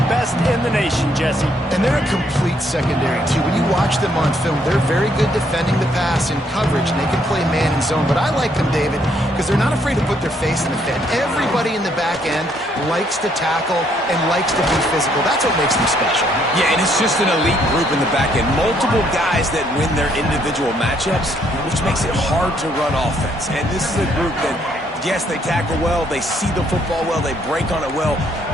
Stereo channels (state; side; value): normal; both; correlation 0.70